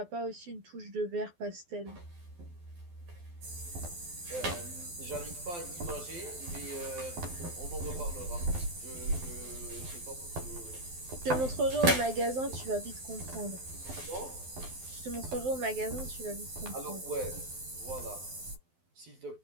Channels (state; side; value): late; left; 12 ms